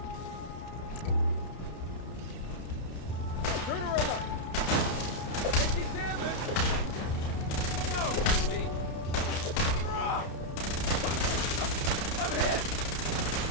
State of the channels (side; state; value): right; late; 31 ms